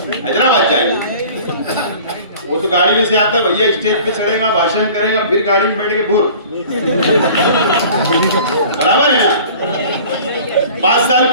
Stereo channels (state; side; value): inverted; both; correlation -0.45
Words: हैदराबाद जाएंगे, वो तो गाड़ी में से आता भैया, स्टेज पे चढ़ेगा, भाषण करेगा, फिर गाड़ी में बैठ के भूर, बराबर है ना। 5 साल